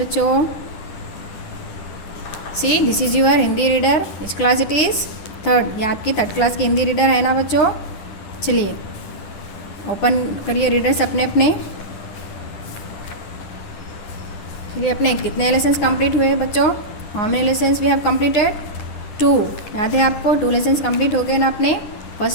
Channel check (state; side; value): late; right; 9.7 ms